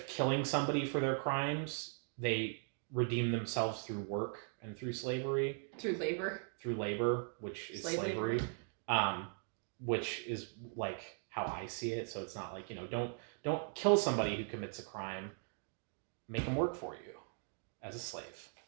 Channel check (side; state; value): left; silent; 52 dB below the other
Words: killing somebody for their crimes, they redeem themselves through work and through slavery. Through labor. Which is Slave slavery. labor. Which is like how I see it. So it's not like, don't kill somebody who commits a crime. Make them work for you as a slave.